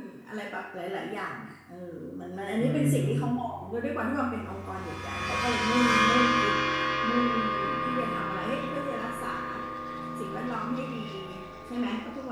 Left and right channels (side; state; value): both; identical; correlation 1.00